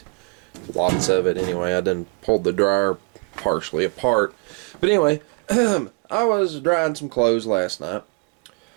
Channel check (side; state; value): left; quieter; 34.1 dB